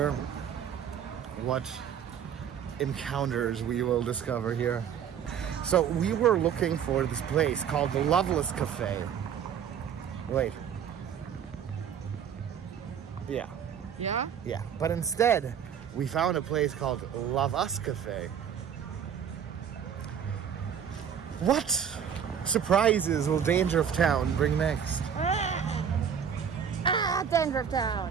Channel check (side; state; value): left; quieter; 8.2 dB